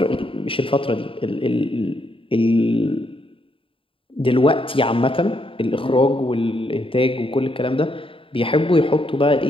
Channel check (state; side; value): late; right; 0.26 ms